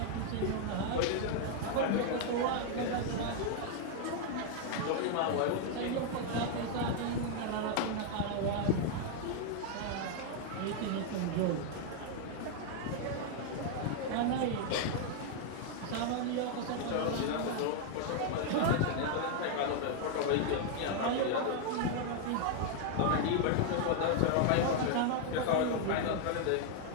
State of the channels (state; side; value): different; both; correlation 0.00